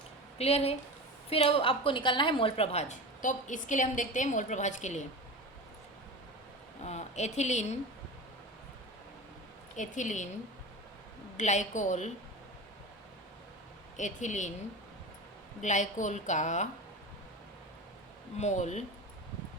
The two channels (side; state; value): both; normal; correlation 0.29